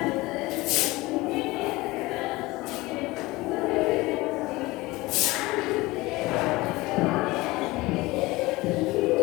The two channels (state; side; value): quieter; right; 20.8 dB